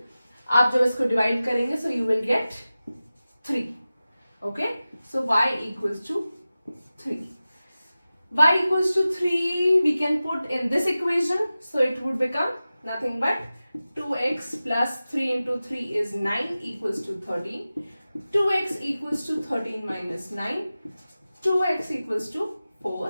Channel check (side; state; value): both; inverted; correlation -0.95